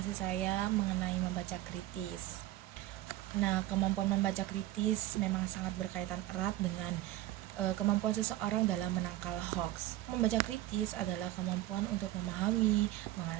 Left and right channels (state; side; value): quieter; left; 15.5 dB